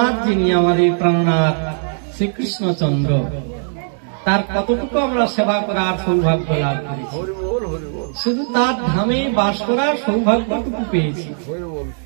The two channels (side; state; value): left; silent; digital silence